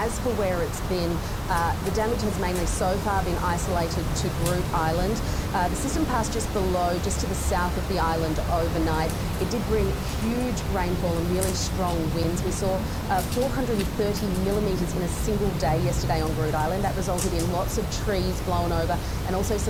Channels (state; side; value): identical; both; correlation 1.00